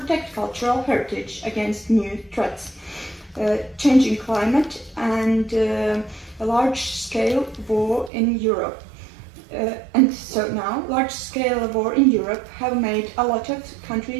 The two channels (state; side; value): drops out; left; at 8.1 s